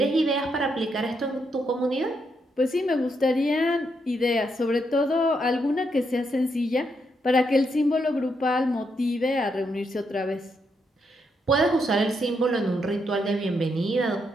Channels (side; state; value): both; normal; correlation 0.79